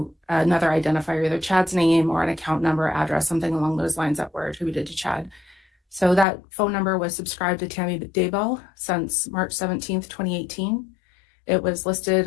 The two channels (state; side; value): drops out; right; at 6.2 s